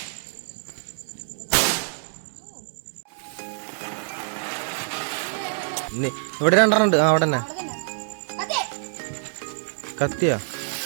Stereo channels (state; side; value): silent; left; digital silence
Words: ഇവിടെ 2 ഉണ്ട്. അവിടെ തന്നെ കത്തിയാ.